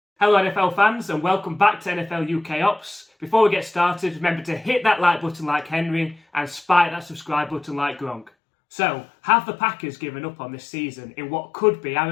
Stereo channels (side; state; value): right; drops out; at 8.3 s